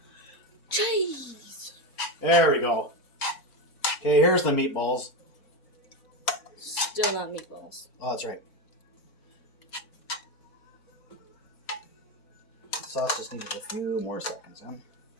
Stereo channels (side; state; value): both; normal; correlation 0.15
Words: Cheese! There we go. Okay, here's the meatballs. Still not meatballs. Oh, that's right. The sauce just needed a few more seconds, huh?